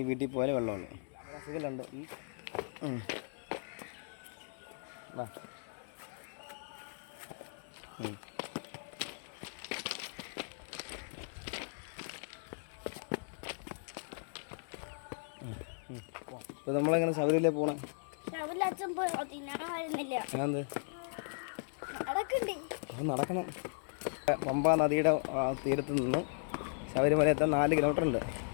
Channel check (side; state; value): right; silent; digital silence